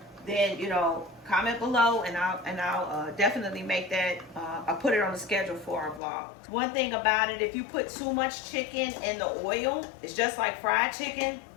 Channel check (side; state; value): right; drops out; at 6.0 s